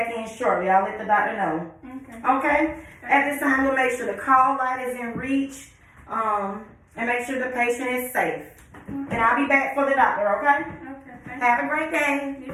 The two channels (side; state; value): both; identical; correlation 1.00